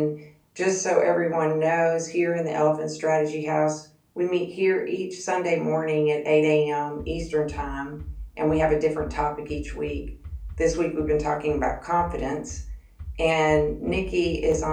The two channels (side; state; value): both; identical; correlation 1.00